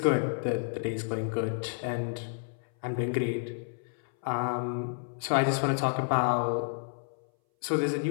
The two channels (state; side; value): silent; right; 58 dB below the other